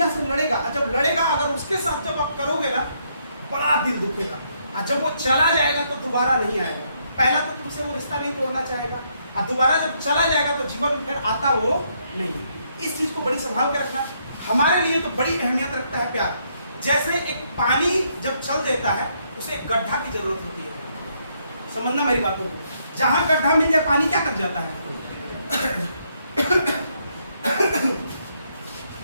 से लड़ेगा। और जब लड़ेगा, अगर उसके साथ जब आप करोगे ना, बड़ा दिल दुखेगा, और जब वो चला जाएगा तो दोबारा नहीं आएगा। पहला तो तुमसे वो रिश्ता नहीं तोड़ना चाहेगा, और दोबारा जब चला जाएगा तो जीवन में फिर आता वो नहीं। इस चीज को बड़ी संभाल के रखना। हमारे लिए तो बड़ी अहमियत रखता है प्यार। जैसे एक पानी जब चल देता है, उसे एक गड्ढा की जरूरत होती है, समझना मेरी बातों को। जहां गड्ढा मिल जाए पानी क्या कर जाता है,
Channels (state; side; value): inverted; both; correlation -0.74